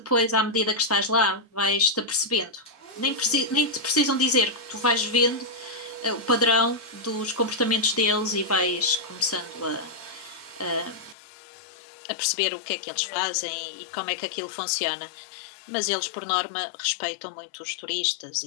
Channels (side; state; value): right; drops out; at 11.2 s